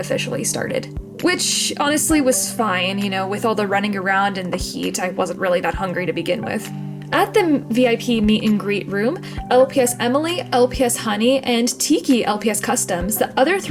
started. Which honestly was fine, you know, with all the running around and the heat, I wasn't really that hungry to begin with. At the VIP meet and greet room, LPS Emily, LPS Honey, and Tiki LPS Customs, the other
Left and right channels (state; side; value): identical; both; correlation 1.00